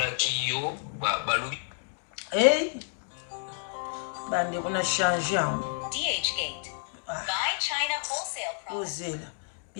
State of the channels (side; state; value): right; silent; 58 dB below the other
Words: bandeko na change yango DHgate. Buy China wholesale products. Bozela.